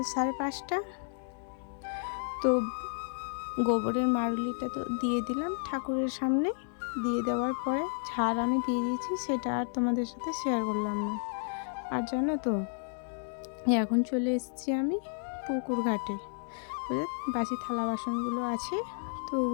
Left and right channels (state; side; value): silent; right; 57 dB below the other